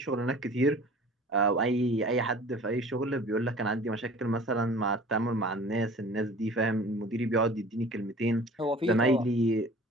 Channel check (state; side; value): normal; both; correlation 0.45